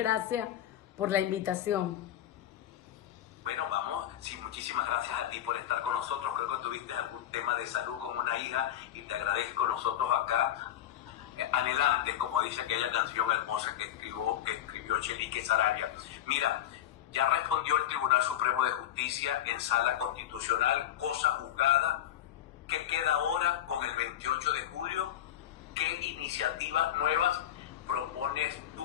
por la invitación. Bueno, vamos, sí, muchísimas gracias a ti por estar con nosotros. Creo que tuviste algún tema de salud con una hija y te agradezco nosotros acá, anhelantes, como dice aquella canción hermosa que escribió Chelique Sarabia. Mira, ya respondió el Tribunal Supremo de Justicia en sala constitucional, cosa juzgada. ¿Qué queda ahora con el 28 de julio? ¿Qué iniciativas nuevas propones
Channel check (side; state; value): right; quieter; 11.7 dB